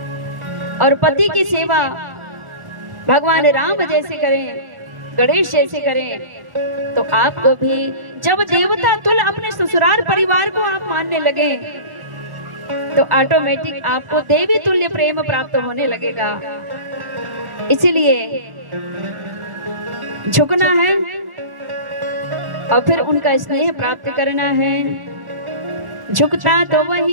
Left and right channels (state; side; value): late; left; 1.1 ms